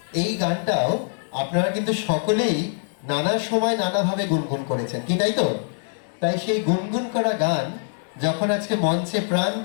এই গানটাও আপনারা কিন্তু সকলেই নানা সময় নানাভাবে গুনগুন করেছেন, কি তাই তো? তাই সেই গুনগুন করা গান যখন আজকে মঞ্চে প্রাণ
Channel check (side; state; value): right; silent; digital silence